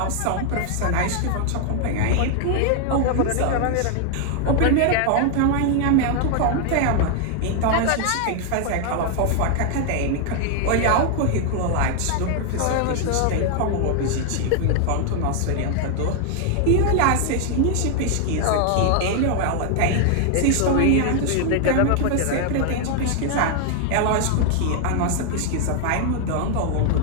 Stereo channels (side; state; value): both; different; correlation 0.00